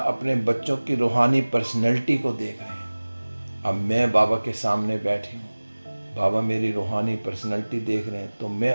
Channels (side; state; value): both; inverted; correlation -1.00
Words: अपने बच्चों की रूहानी पर्सनैलिटी को देख रहे हैं। अब मैं बाबा के सामने बैठी हूँ, बाबा मेरी रूहानी पर्सनैलिटी देख रहे हैं, तो